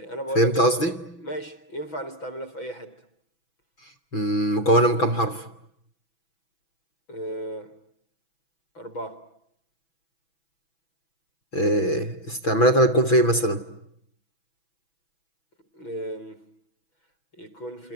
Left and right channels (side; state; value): right; late; 6.1 ms